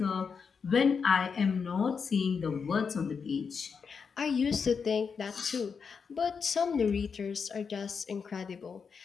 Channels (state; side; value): quieter; right; 5.9 dB